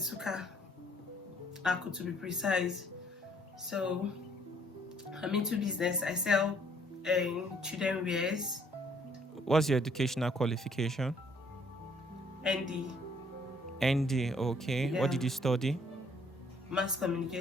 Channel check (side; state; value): both; normal; correlation 0.63